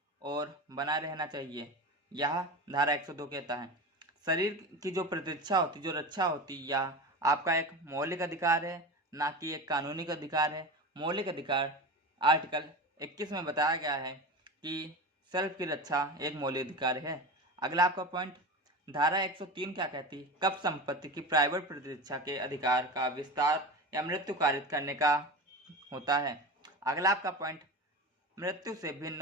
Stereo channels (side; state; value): both; normal; correlation 0.27